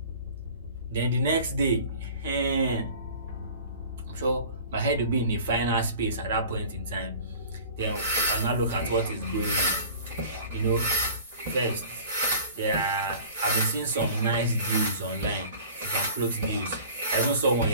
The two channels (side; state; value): both; inverted; correlation -0.44